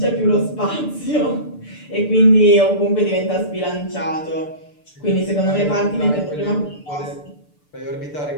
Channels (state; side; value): late; right; 6.8 ms